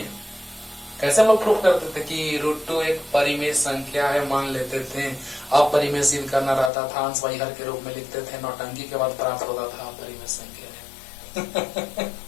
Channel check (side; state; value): right; drops out; at 6.7 s